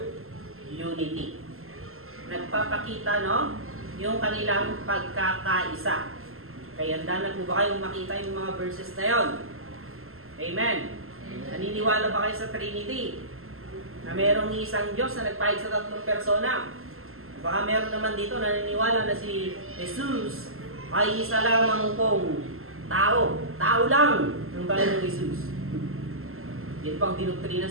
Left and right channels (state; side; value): late; left; 0.62 ms